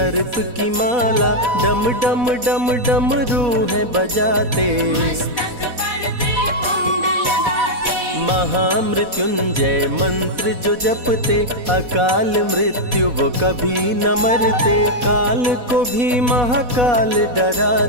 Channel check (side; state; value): left; late; 4.1 ms